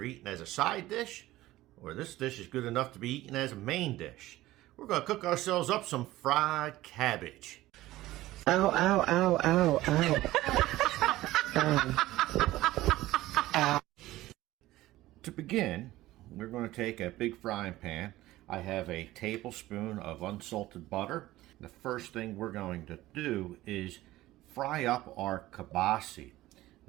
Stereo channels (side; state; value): left; quieter; 16.6 dB